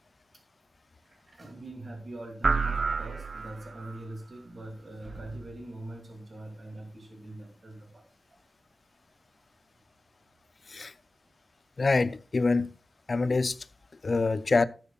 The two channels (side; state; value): both; normal; correlation 0.93